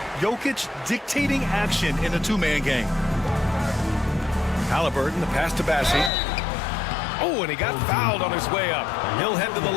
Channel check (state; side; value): drops out; right; at 6.1 s